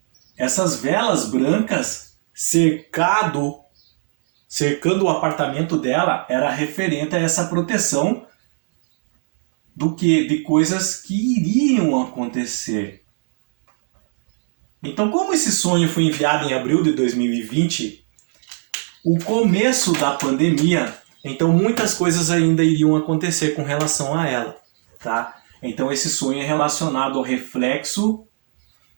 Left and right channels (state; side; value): silent; left; 59 dB below the other